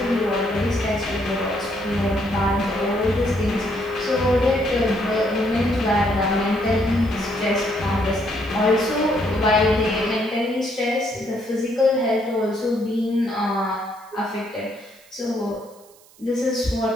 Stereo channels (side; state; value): right; noise; hiss, 27 dB below the sound